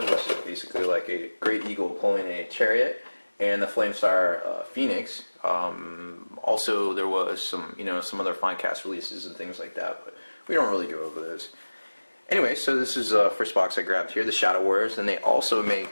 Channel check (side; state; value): both; inverted; correlation -1.00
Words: which is basically like a great eagle pulling a chariot, and the Flamesire Phoenix. Also, there was some, some other fine cast releases and things like that, but we don't really go over those. Anyway, so this is the first box I grabbed here, the Shadow Warriors, and they also